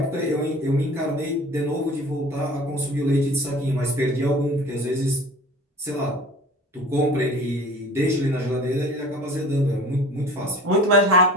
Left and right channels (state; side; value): normal; both; correlation 0.42